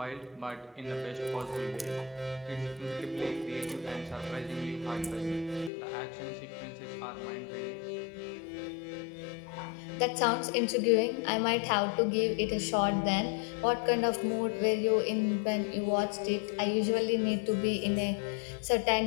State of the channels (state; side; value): drops out; right; at 5.7 s